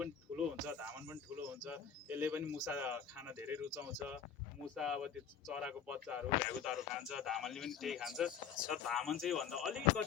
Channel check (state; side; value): quieter; right; 7.6 dB